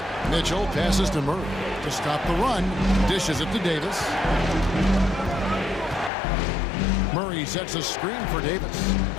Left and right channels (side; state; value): right; drops out; at 6.1 s